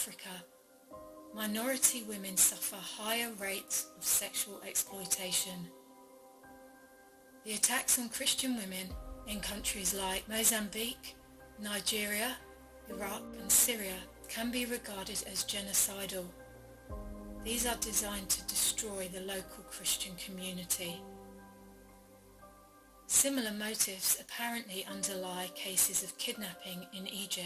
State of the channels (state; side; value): identical; both; correlation 1.00